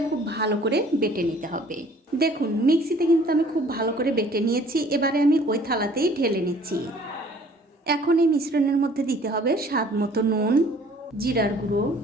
খুব ভালো করে বেটে নিতে হবে। দেখুন মিক্সিতে কিন্তু আমি খুব ভালো করে বেটে নিয়েছি। এবারে আমি ওই থালাতেই ঢেলে নিচ্ছি। এখন এই মিশ্রণের মধ্যে দিতে হবে স্বাদ মতো নুন, জিরার গুঁড়ো,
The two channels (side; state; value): both; normal; correlation 0.54